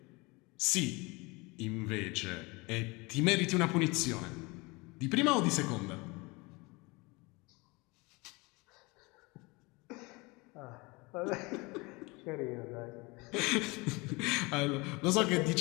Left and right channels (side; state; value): right; quieter; 25.5 dB